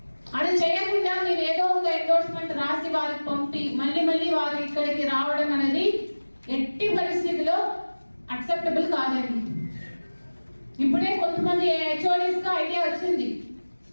అది చేయకుండా మీరు ఏదో ఒక ఎండోర్స్మెంట్ రాసి వారికి పంపి మళ్ళీ మళ్ళీ వారు ఇక్కడికి రావడం అనేది ఎట్టి పరిస్థితిలో అక్సెప్టబుల్ కాదండి. ఇప్పుడే కొంతమంది హెచ్ఓడీస్ గా ఐడియా వచ్చింది,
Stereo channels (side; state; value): both; inverted; correlation -1.00